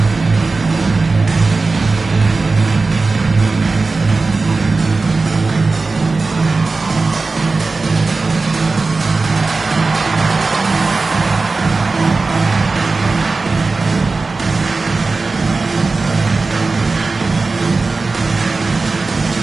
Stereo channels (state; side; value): quieter; left; 3.8 dB